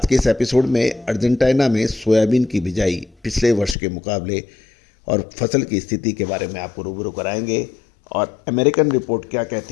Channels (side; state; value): right; drops out; at 3.8 s